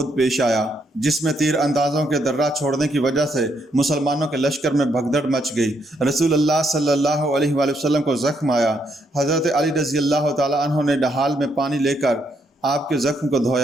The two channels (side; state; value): both; normal; correlation 0.75